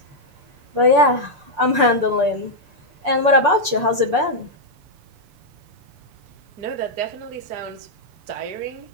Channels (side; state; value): left; late; 6.9 ms